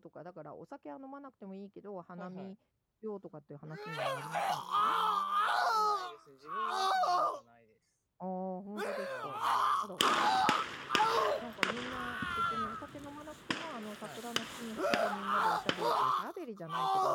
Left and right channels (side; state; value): both; identical; correlation 1.00